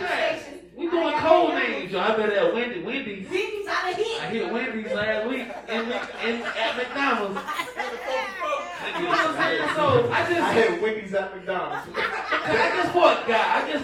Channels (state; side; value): identical; both; correlation 1.00